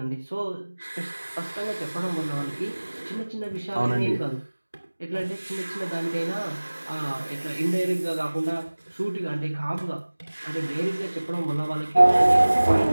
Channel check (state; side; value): inverted; both; correlation -1.00